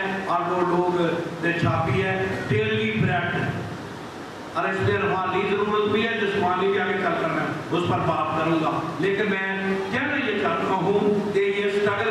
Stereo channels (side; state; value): both; identical; correlation 1.00